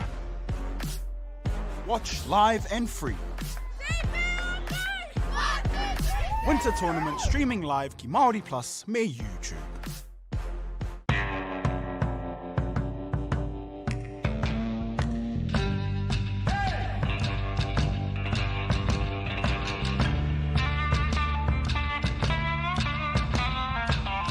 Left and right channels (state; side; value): identical; both; correlation 1.00